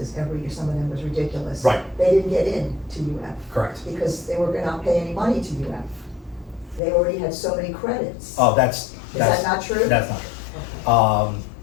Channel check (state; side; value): drops out; right; at 6.8 s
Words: every year, some of them was ridiculous. Right. They didn't get in to UF Correct. because they were gonna not pay any money to UF. They already had so many credits. Oh, that's Is that not true? That's not true.